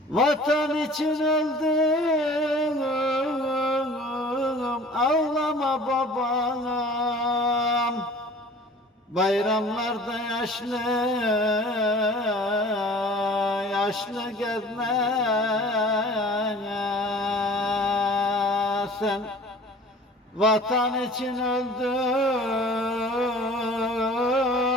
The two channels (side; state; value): both; normal; correlation 0.45